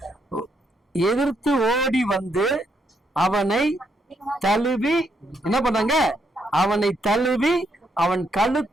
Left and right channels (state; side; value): normal; both; correlation 0.76